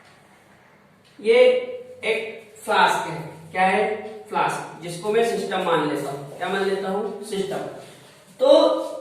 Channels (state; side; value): identical; both; correlation 1.00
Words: ये एक फ्लास्क है। क्या है? फ्लास्क, जिसको मैं सिस्टम मान लेता हूं। क्या मान लेता हूं? सिस्टम। तो